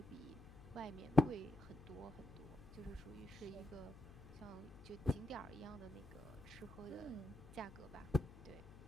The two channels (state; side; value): noise; left; hum, 16 dB below the sound